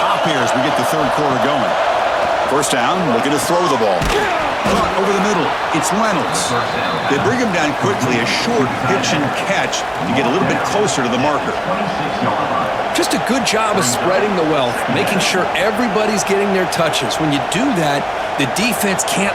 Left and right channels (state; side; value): identical; both; correlation 1.00